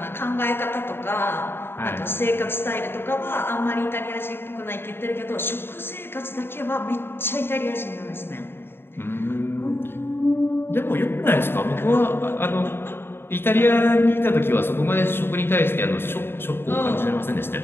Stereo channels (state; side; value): late; right; 0.11 ms